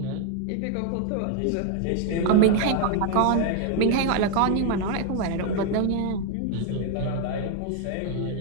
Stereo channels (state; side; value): different; both; correlation 0.00